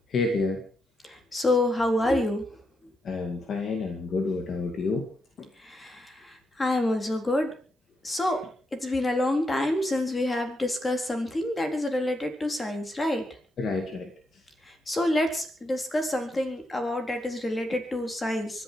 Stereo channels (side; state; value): both; normal; correlation 0.82